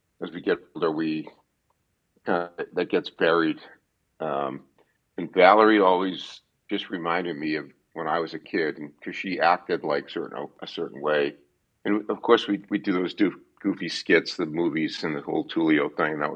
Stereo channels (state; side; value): identical; both; correlation 1.00